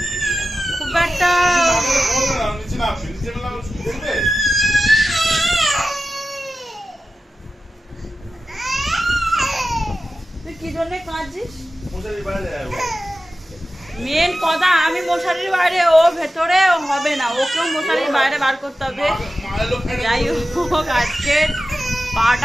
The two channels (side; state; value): both; normal; correlation 0.93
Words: খুব একটা তুই কি জন্য কাঁদছিস? মেন কথা, আমি মশারির বাইরে, ও ভেতরে হবে না, ওকেও মশারির বাইরে বার করতে হবে। যাই হোক, আজকে